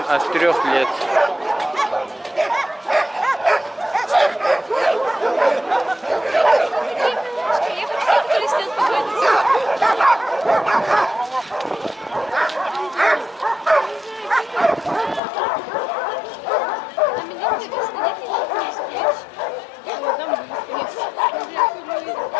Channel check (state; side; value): drops out; right; at 15.2 s